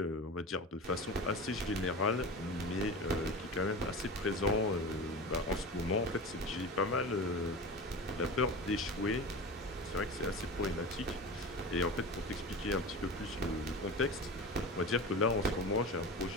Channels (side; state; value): both; normal; correlation 0.30